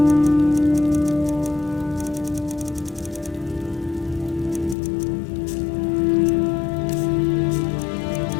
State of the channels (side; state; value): right; drops out; at 4.8 s